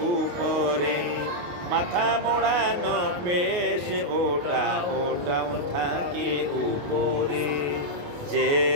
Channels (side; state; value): left; late; 28 ms